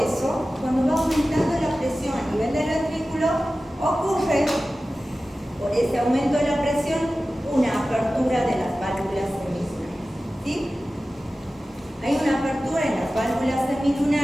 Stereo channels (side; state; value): both; normal; correlation 0.95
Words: cuando va aumentando la presión a nivel del ventrículo, ocurre, por ese aumento de la presión, una apertura de las válvulas semilunares, ¿sí? Hay una apertura en las válvulas